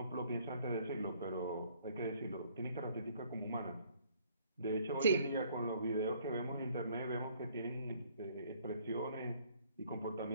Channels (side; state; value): both; inverted; correlation -0.61